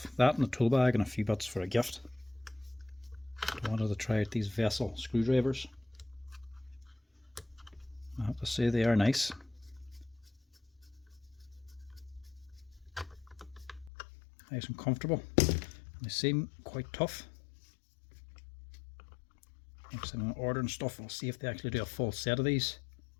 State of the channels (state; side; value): drops out; right; at 13.9 s